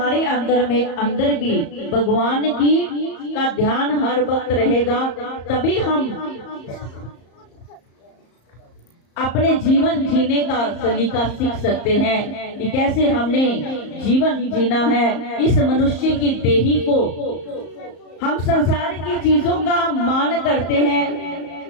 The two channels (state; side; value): late; right; 34 ms